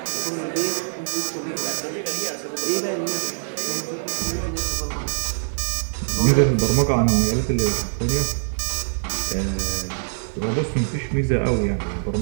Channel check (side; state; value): left; silent; 62 dB below the other